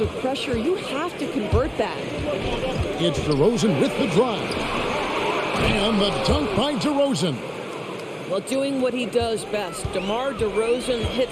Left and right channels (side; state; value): both; identical; correlation 1.00